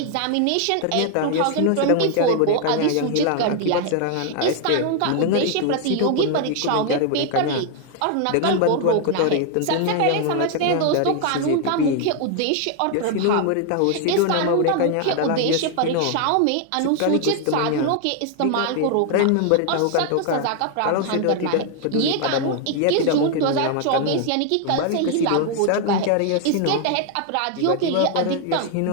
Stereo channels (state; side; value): different; both; correlation 0.00